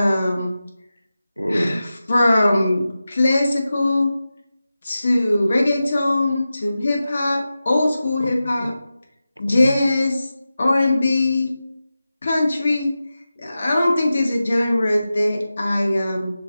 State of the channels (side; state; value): both; inverted; correlation -0.93